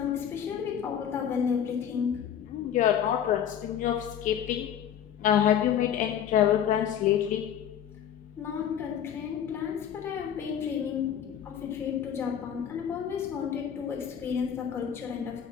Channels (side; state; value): right; quieter; 9.2 dB